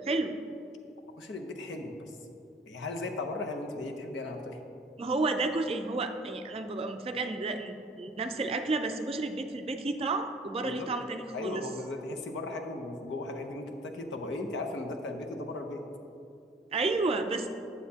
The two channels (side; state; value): both; normal; correlation 0.52